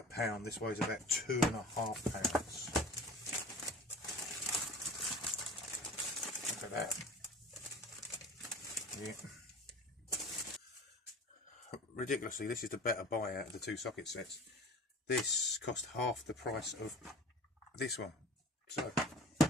pound. This weighs about 2.5 pounds. Look at that. Yeah. Ridiculously, this is the better buy out of the two socket sets. This cost half the price of this one. So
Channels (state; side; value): normal; both; correlation 0.41